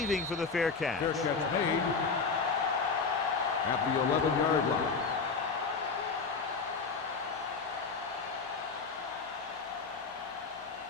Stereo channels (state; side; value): quieter; right; 4.9 dB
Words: for the fair catch. Fair catch made at the 11-yard line.